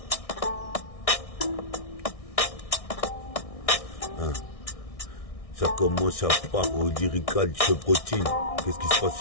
Ça commence à part au lyrical chevrotine. Qu'est-ce qui se passe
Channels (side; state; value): right; late; 1.6 ms